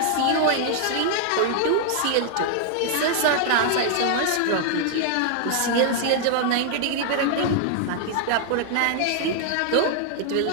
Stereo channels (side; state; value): both; different; correlation 0.00